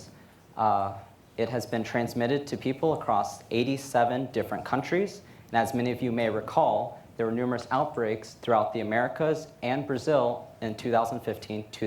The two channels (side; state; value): both; identical; correlation 1.00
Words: It has been transmitted to people across 87 different countries. And as many of you may recall, there were numerous outbreaks throughout the Americas and Brazil in